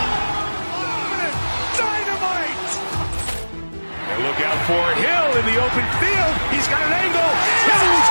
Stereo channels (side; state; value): both; inverted; correlation -1.00